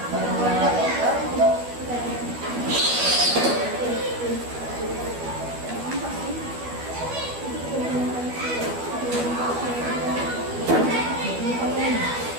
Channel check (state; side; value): late; left; 12 ms